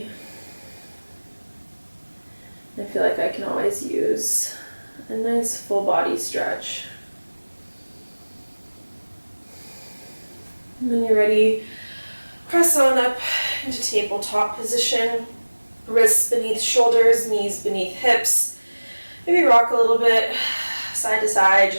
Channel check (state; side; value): inverted; both; correlation -1.00